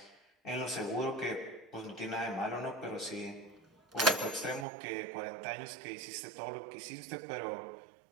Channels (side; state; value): left; drops out; at 4.7 s